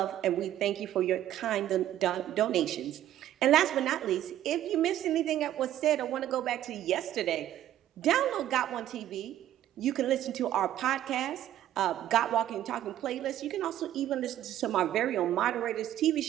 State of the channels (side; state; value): left; quieter; 12.4 dB